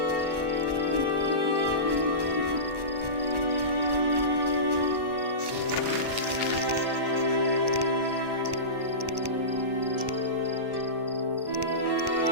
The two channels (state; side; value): late; left; 1.1 ms